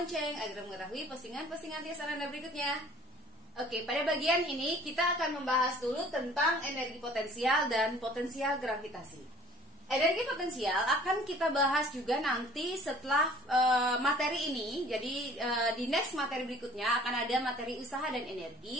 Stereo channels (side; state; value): both; normal; correlation 0.51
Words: agar mengetahui postingan-postingan Tirsa Nanda berikutnya. Oke, pada bagian ini kita akan membahas dulu tentang energi potensial dan potensial gravitasi. Energi potensial akan kita bahas juga nanti setelah materi ini. Jadi di next materi berikutnya akan ada materi usaha dan